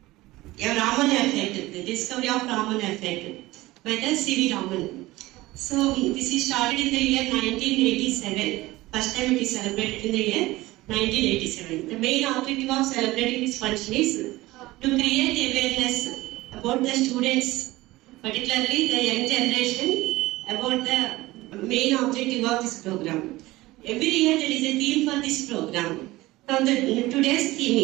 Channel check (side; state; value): left; quieter; 18.8 dB